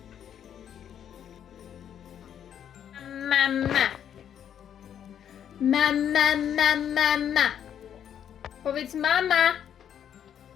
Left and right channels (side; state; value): right; quieter; 9.3 dB